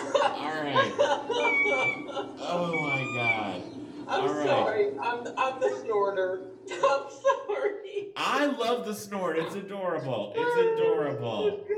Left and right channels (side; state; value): both; identical; correlation 1.00